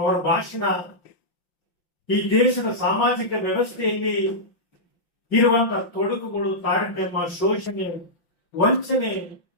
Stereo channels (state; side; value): late; right; 5.7 ms